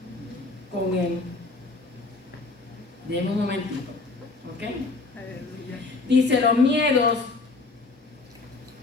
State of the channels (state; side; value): quieter; right; 3.7 dB